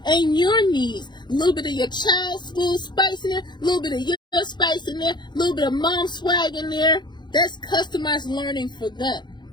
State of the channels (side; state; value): right; late; 0.21 ms